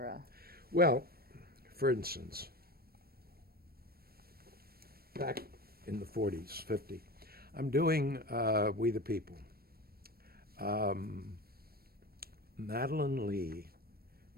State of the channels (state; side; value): late; left; 0.44 ms